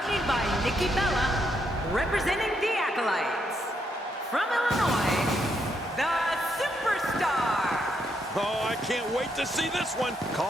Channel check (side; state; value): both; normal; correlation 0.77